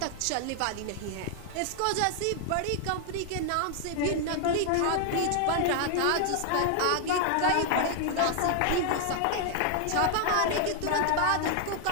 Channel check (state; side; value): different; both; correlation 0.00